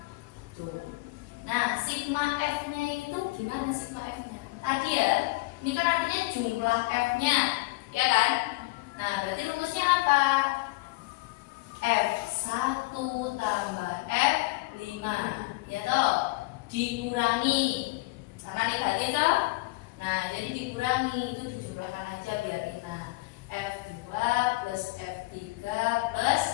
Tuh. Nah, sigma F-nya itu gimana sigma F-nya? Tadi ya, ini kan artinya jumlah F-nya, ya kan? Nah, berarti rumusnya apa? F1 tambah F5, ya toh? Dikurangi, karena negatif toh? Nah, jadi dikurangi, itu dijumlahkan aja biar enak. F2 plus F3 plus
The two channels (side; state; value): right; quieter; 22.3 dB